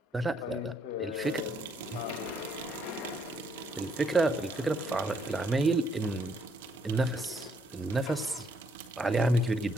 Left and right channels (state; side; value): normal; both; correlation 0.72